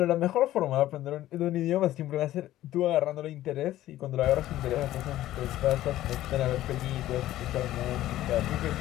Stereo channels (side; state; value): right; quieter; 14.3 dB